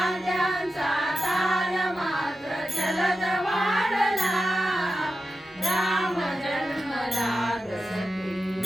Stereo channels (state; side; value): normal; both; correlation 0.92